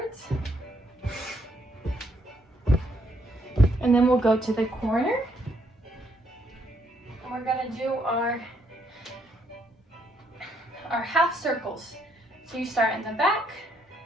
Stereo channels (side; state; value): both; normal; correlation 0.72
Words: And then we'll go to the corner. And we're going to do our half circles. So you start in the back.